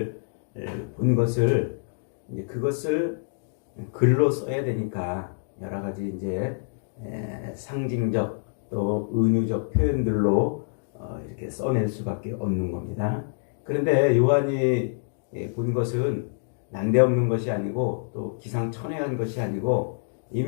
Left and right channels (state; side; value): silent; right; digital silence